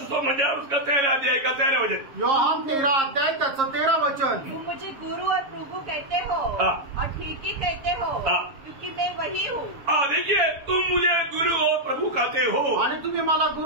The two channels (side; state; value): left; late; 7.2 ms